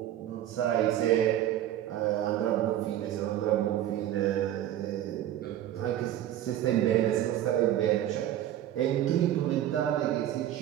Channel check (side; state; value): left; quieter; 12.2 dB